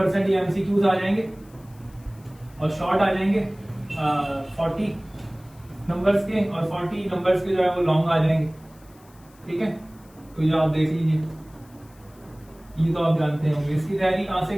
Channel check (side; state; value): left; noise; hiss, 29 dB below the sound